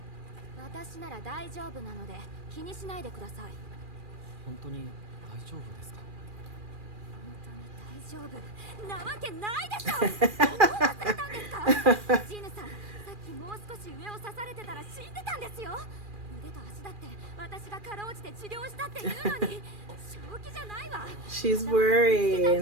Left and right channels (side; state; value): left; late; 2.4 ms